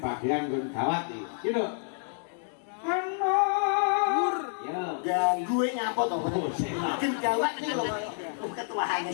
bagian nggon gawat iki. Iki lho. Anur. Ya. Lah gue ngapa to? Oh, sing lah. Makin gawat iki lho ketuane.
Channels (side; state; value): right; silent; 59 dB below the other